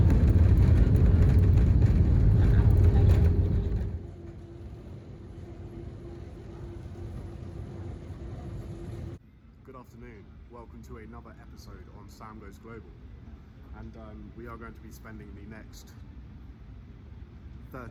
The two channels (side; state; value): both; identical; correlation 1.00